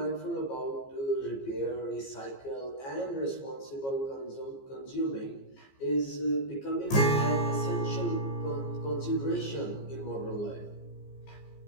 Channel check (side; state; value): right; late; 15 ms